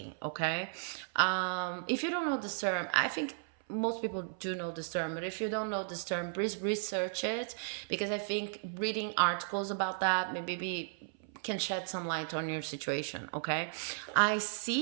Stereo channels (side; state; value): left; silent; 55 dB below the other